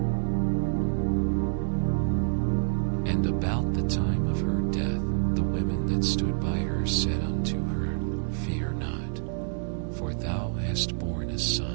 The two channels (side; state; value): left; silent; 60 dB below the other